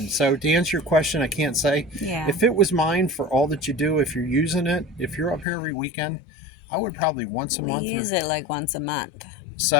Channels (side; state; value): right; drops out; at 5.5 s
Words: So to answer your question, I can't say. If it was mine for all that you do, if you're using it, if you're up here every weekend, I would probably once a month. We use it like once a month.